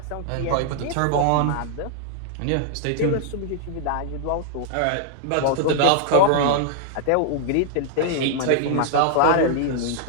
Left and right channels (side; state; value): both; different; correlation 0.00